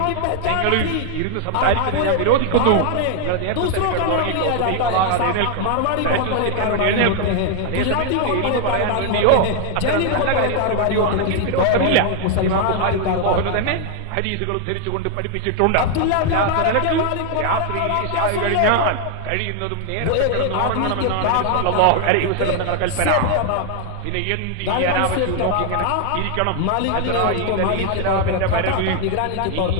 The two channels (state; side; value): different; both; correlation 0.00